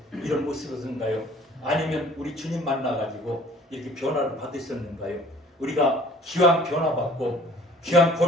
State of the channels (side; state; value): both; normal; correlation 0.52